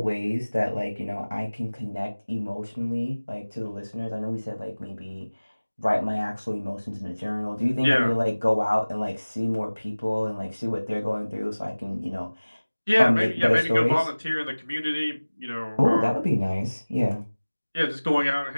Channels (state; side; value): inverted; both; correlation -1.00